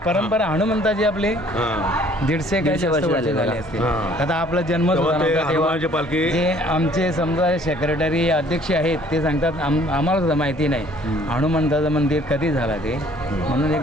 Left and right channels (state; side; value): normal; both; correlation 0.57